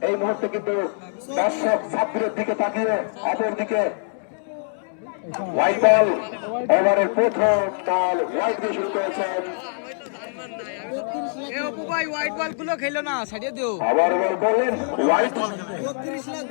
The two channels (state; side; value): silent; right; 63 dB below the other